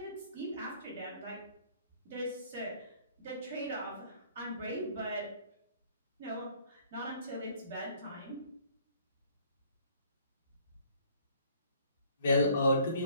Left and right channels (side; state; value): both; inverted; correlation -0.59